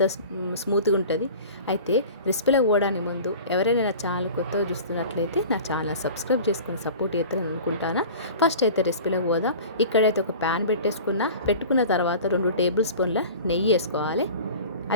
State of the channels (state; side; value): inverted; both; correlation -0.39